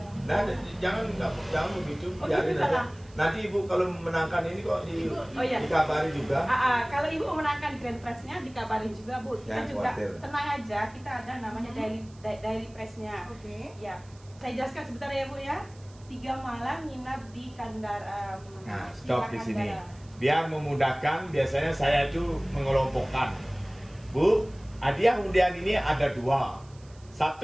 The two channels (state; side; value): noise; right; hiss, 27 dB below the sound